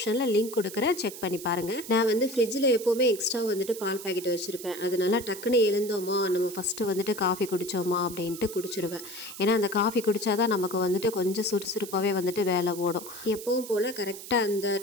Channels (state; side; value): noise; right; hiss, 13 dB below the sound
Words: லிங்க் கொடுக்குறேன், செக் பண்ணி பாருங்கள். நான் ஃப்ரிட்ஜில் எப்போவுமே எக்ஸ்ட்ரா பால் பாக்கெட் வச்சுருப்பேன். அதனால டக்குன்னு எழுந்தோமா, நம்ம ஃபஸ்ட்டு காஃபி குடித்தோமா அப்படின்ட்டு குடிச்சிடுவேன். ஏன்னா அந்த காஃபி குடித்தாதான் நமக்கு கொஞ்சம் சுறுசுறுப்பாகவே வேலை ஓடும். எப்பவும் போல் கரெக்டாக அந்த